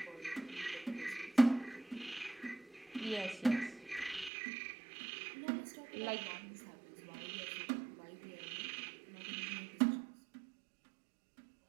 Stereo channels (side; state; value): left; drops out; at 4.3 s